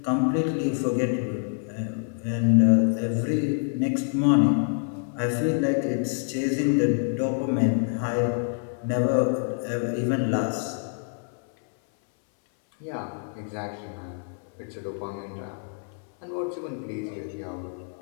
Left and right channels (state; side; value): silent; right; 61 dB below the other